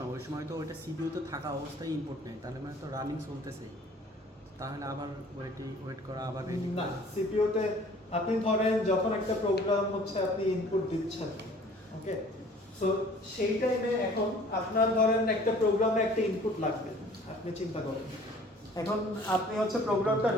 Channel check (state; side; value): normal; both; correlation 0.51